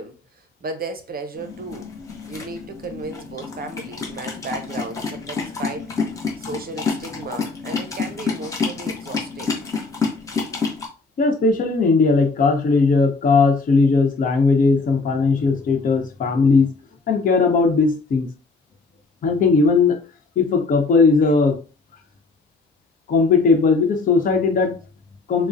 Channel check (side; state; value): right; quieter; 3.9 dB